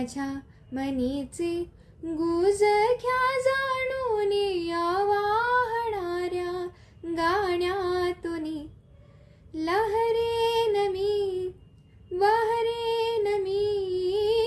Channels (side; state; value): both; identical; correlation 1.00